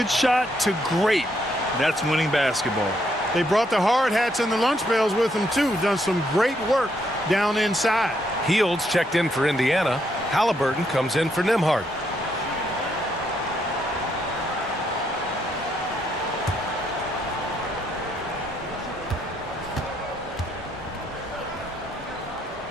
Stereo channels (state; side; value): normal; both; correlation 0.74